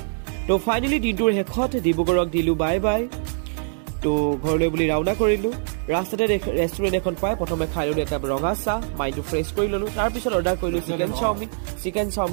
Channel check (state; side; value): silent; left; digital silence